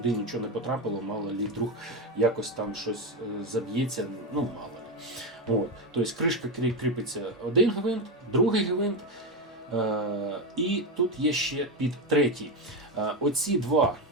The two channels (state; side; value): normal; both; correlation 0.12